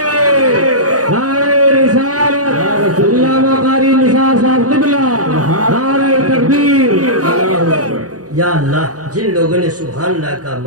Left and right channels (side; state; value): left; late; 0.67 ms